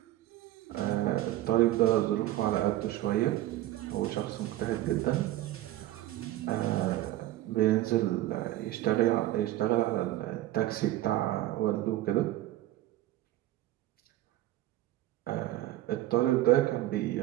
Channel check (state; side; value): quieter; left; 15.3 dB